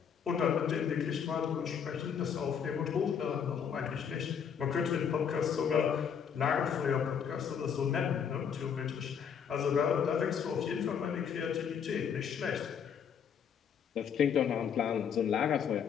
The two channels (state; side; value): quieter; right; 7.5 dB